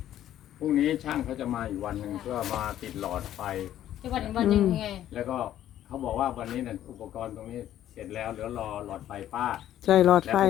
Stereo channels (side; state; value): right; quieter; 12.0 dB